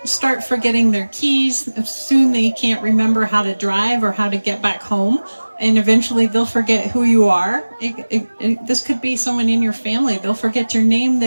start forgetting their keys. Soon they can't remember how to drive or how to get back home. And eventually they'll forget who you are. This could be someone in your family. They'll forget your name.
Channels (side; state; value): both; inverted; correlation -1.00